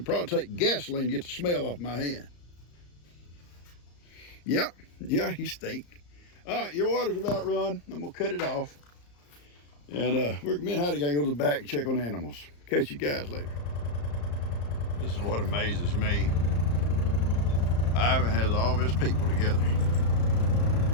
probably take gasoline to get the smell off my hand. Yep, yeah, he stink. All right, your water's about run. I'm gonna cut it off. And me and Heidi gotta go to the back and check on the animals. Catch you guys later. This is what amazes me. Ivan has all of his people together.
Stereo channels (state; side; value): late; right; 34 ms